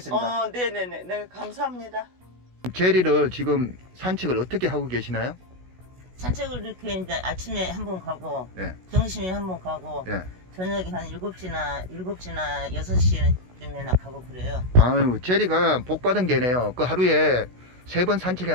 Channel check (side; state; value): left; late; 16 ms